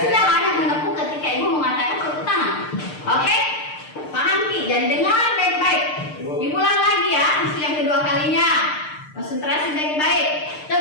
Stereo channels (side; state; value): right; late; 6.6 ms